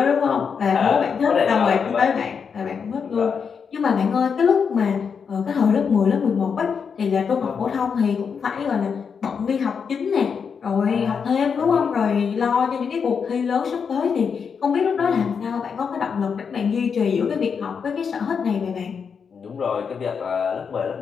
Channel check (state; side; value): quieter; right; 6.3 dB